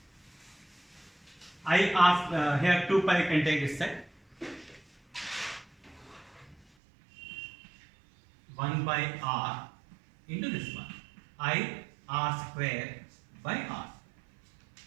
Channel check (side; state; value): left; drops out; at 6.6 s